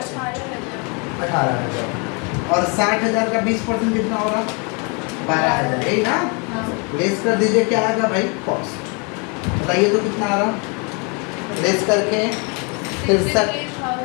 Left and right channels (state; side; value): quieter; right; 33.3 dB